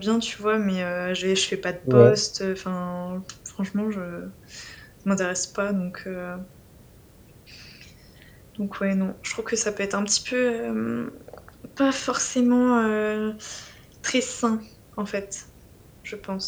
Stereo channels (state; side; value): identical; both; correlation 1.00